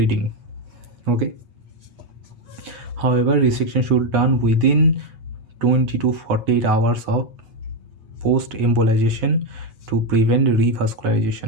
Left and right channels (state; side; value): late; left; 8.9 ms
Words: Okay, however, resection should be done within 20 to 48 hours of post embolization to prevent revascularization.